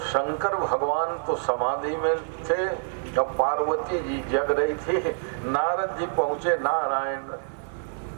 शंकर भगवान तो समाधि में थे, जब पार्वती जी जग रही थी, नारद जी पहुंचे। नारायण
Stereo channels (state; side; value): silent; left; 60 dB below the other